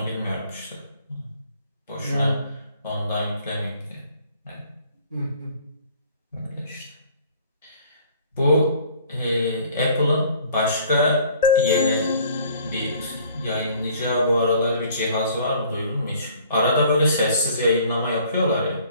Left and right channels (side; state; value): both; inverted; correlation -0.55